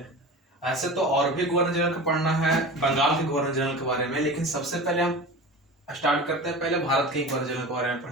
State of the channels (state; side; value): normal; both; correlation 0.33